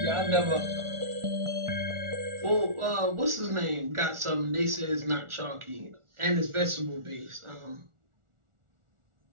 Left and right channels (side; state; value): left; late; 1.4 ms